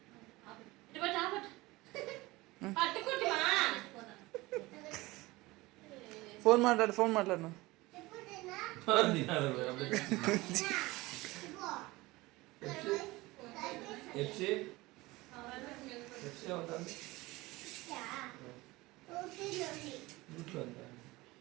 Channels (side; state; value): left; quieter; 20.7 dB